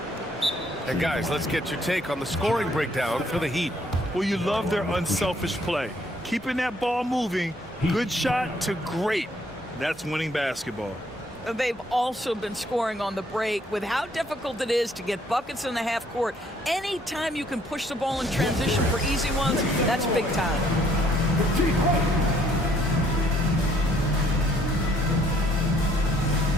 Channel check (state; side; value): normal; both; correlation 0.65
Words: And guys, let's get your take on the scoring breakdown for the Heat. Well, you love their unselfish play. Keeping that ball moving, good shot to great. That's winning basketball. They've also been scoring on the break. With how difficult it is to get buckets in the half court, anytime you can push the ball in transition for easy ones, that's big time.